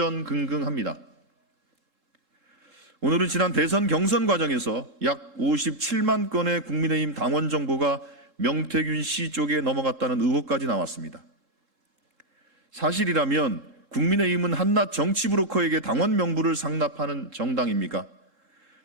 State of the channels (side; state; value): left; late; 3.7 ms